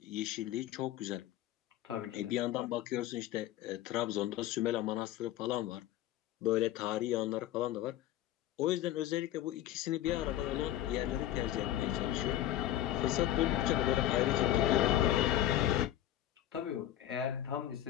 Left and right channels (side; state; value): right; quieter; 12.9 dB